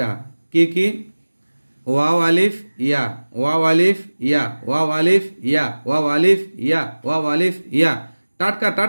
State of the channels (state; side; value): inverted; both; correlation -1.00